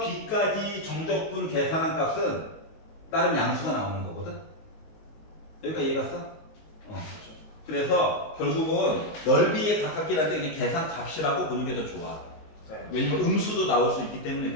정적분 계산한 값은 다른 양수가 나오는 거거든. 여기까지 이해갔어? 그래서 결국은 넓이에 가깝긴 한데 그냥 계산 값이라고 보는 게 더 좋아. 네. 왜냐면 음수도 나올 수 있기 때문에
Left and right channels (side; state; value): right; late; 19 ms